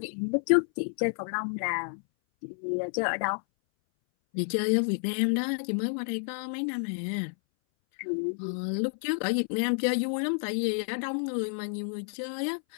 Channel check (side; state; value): right; silent; 58 dB below the other